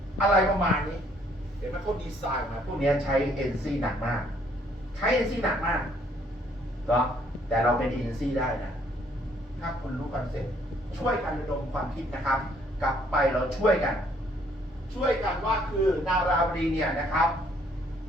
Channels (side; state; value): both; normal; correlation 0.65